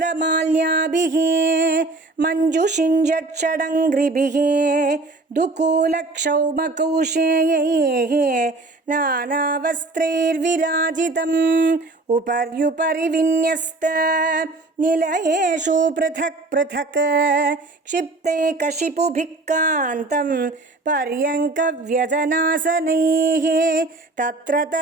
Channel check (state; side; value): quieter; left; 3.2 dB